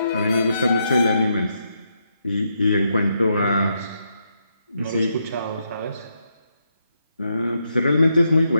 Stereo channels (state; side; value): inverted; both; correlation -0.81